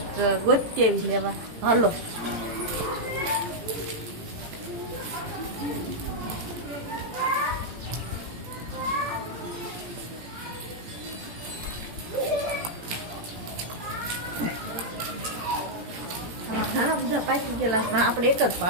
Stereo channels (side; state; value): left; late; 17 ms